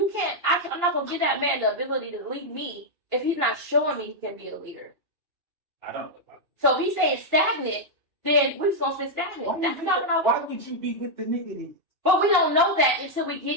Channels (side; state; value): left; late; 2.9 ms